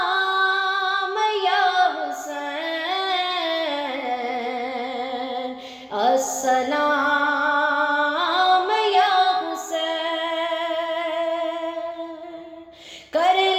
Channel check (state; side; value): identical; both; correlation 1.00